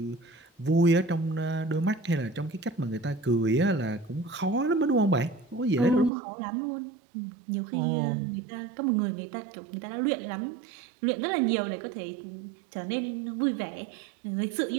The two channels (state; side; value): drops out; left; at 6.1 s